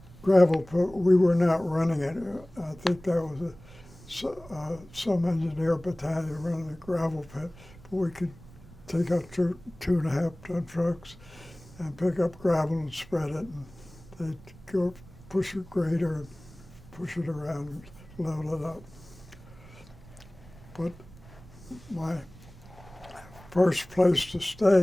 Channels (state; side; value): noise; right; rumble, 21 dB below the sound